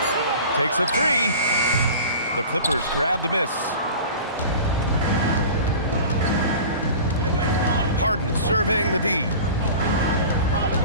Takes a 3. The Clippers grab the miss. Harden surveying the D.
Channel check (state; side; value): inverted; both; correlation -0.38